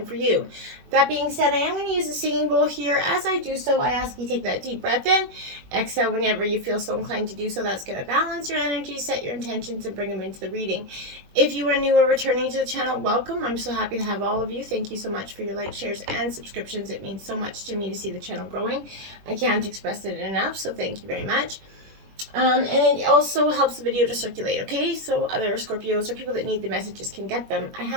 for you. That being said, I am going to use a singing bowl here. As I do so, I ask you take that deep breath in. Exhale whenever you feel so inclined to do so. That's going to balance your energy, set your intentions, and bring them into the reading. If you are new or returning to the channel, welcome. I'm so happy to have all of you. Thank you so much for your likes, shares, and subscriptions. It means so much to me to see the channel growing. I can't express it enough, so thank you very much. And it also helps the video to circulate, okay? So other Scorpios or people that need the messages can get them. I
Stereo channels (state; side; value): late; left; 21 ms